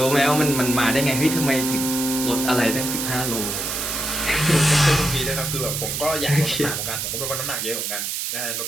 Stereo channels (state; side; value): noise; right; hiss, 3 dB below the sound